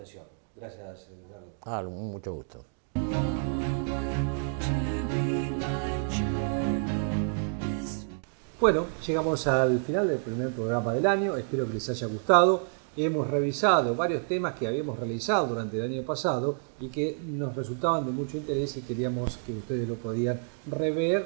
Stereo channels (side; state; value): left; silent; 59 dB below the other